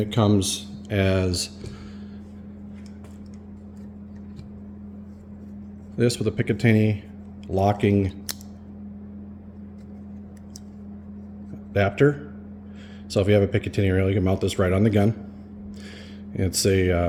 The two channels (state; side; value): identical; both; correlation 1.00